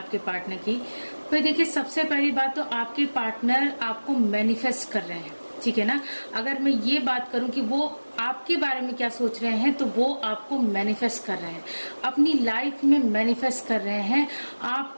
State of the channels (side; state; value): both; inverted; correlation -1.00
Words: पार्टनर की, तो देखिए सबसे पहली बात तो आपके पार्टनर आपको मैनिफेस्ट कर रहे हैं, ठीक है ना। अगर मैं ये बात करूं कि वो आपके बारे में क्या सोच रहे हैं, तो वो आपको मैनिफेस्ट कर रहे हैं, अपनी लाइफ में मैनिफेस्ट कर रहे हैं।